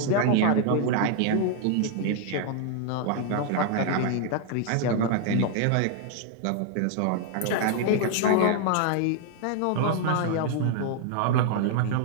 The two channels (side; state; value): both; different; correlation 0.00